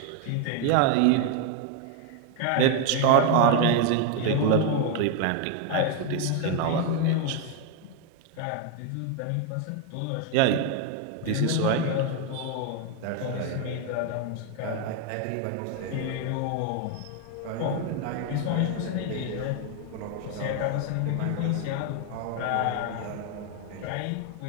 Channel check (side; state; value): both; different; correlation 0.01